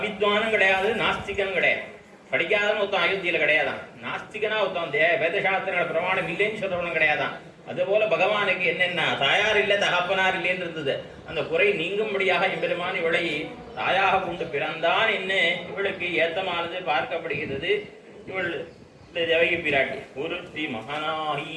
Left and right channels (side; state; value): both; identical; correlation 1.00